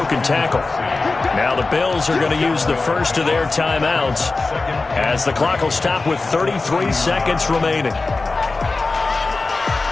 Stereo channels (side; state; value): right; quieter; 3.7 dB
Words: tackle. Now the Bills are going to use the first of their timeouts as the clock will stop with 33 seconds remaining.